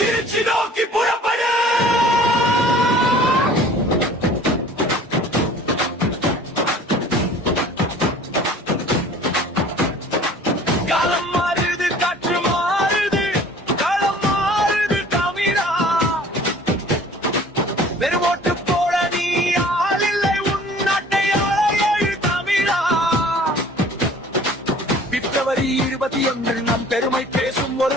நோக்கி புறப்படு. காலம் மாறுது, காற்று மாறுது, களம் மாறுது தமிழா. வெறும் ஓட்டு போட நீ ஆள் இல்லை, உன் நாட்டை ஆள எழு தமிழா. பிப்ரவரி 21 நம் பெருமை பேசும்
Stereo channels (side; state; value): both; normal; correlation 0.49